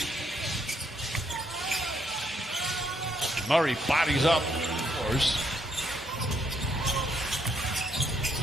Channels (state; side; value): normal; both; correlation 0.73